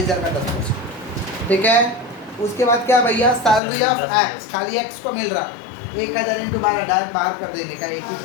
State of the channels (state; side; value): drops out; right; at 3.6 s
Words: का 10%, ठीक है। उसके बाद क्या भैया, सैलरी ऑफ एक्स, खाली एक्स को मिल रहा 1,000 × 12, डायरेक्ट बाहर कर देंगे, क्या एक ही